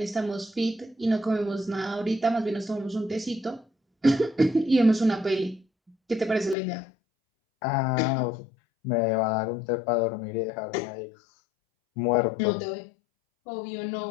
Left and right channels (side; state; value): right; drops out; at 6.6 s